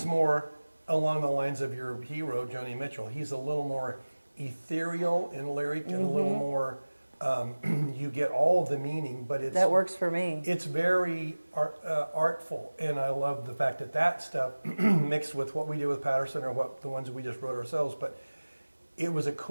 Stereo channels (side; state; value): both; inverted; correlation -1.00